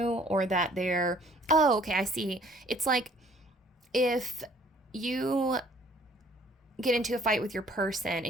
or that oh, okay, I see. It's like if you get into a fight with your person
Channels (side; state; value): both; normal; correlation 0.57